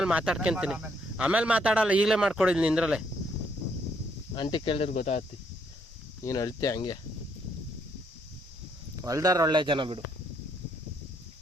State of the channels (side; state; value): both; normal; correlation 0.72